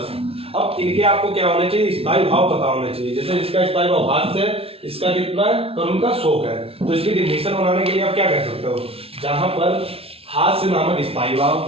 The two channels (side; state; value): left; late; 0.28 ms